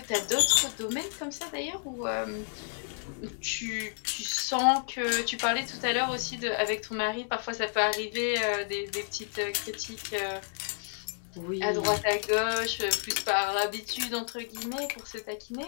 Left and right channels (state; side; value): silent; right; 57 dB below the other